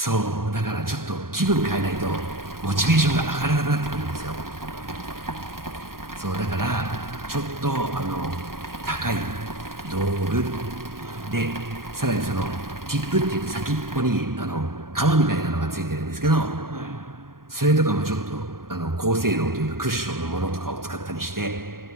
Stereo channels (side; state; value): left; late; 0.92 ms